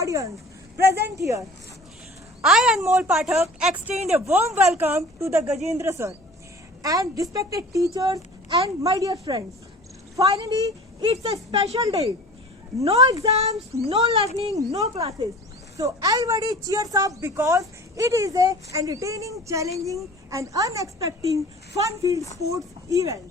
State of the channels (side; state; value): both; normal; correlation 0.43